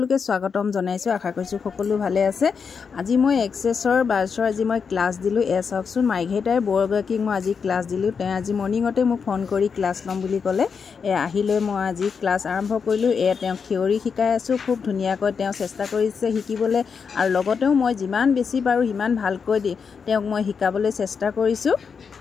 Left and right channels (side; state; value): right; quieter; 6.0 dB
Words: স্বাগতম জনাইছোঁ। আশা কৰিছোঁ সকলো ভালে আছে। আজি মই এক্সেছৰ বাৰ্ছৰ আজি মই ক্লাছ দিলোঁ। চাওকচোন, মাৰ্ঘেৰিটাৰ বৰগৰাকীক মই আজি ক্লাছ দিলোঁ। তেওঁ আজি মৰ্ণিঙতে মোক ফোন কৰি ক্লাছ ল'ম বুলি ক'লে। আহিলৈ মই আজি ক্লাছ আৰম্ভ কৰিলোঁ। তেওঁক থিয়ৰী শিকাই আছোঁ। খুব ধুনীয়াকৈ তেওঁ চেষ্টা কৰিছে শিকিবলৈ, আৰু লগতেও মই যিমান বেছি পাৰোঁ সিমান ভালকৈ তেওঁক মই শিকাবলৈ চেষ্টা কৰিছোঁ।